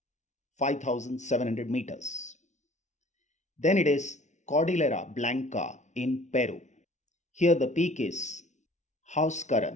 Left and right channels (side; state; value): right; late; 0.34 ms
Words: 5,700 meters. Then it is Cordillera Blanca in Peru. Here the peak is